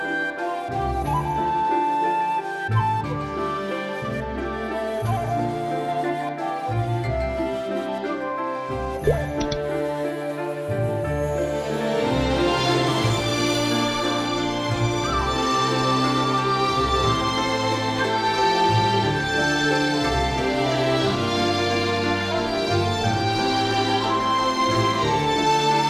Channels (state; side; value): identical; both; correlation 1.00